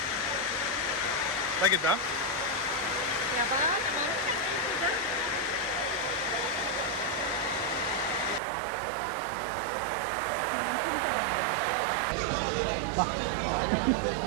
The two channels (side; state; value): left; drops out; at 8.4 s